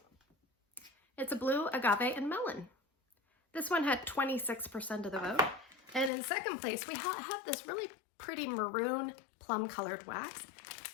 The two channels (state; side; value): drops out; right; at 6.1 s